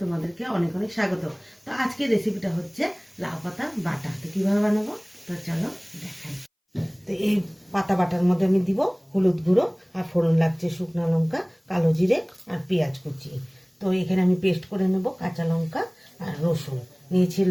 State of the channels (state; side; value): identical; both; correlation 1.00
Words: তোমাদেরকে অনেক অনেক স্বাগত। তো আজকের রেসিপিটা হচ্ছে লাউ পাতা বাটা। তো কীভাবে বানাবো তো চলো দেখাই। তো এই পাতা বাটার মধ্যে আমি দিব হলুদ গুঁড়ো আর ফোড়ন লাগছে শুকনো লঙ্কা, কালো জিরে আর পেঁয়াজ কুচি। তো এখানে আমি পেস্ট করে নেব কাঁচা লঙ্কা আর রসুন, নিয়েছি